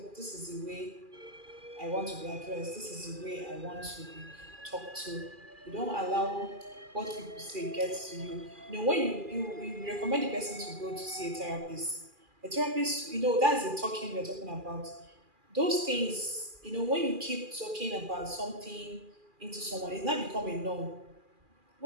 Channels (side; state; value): left; late; 2.4 ms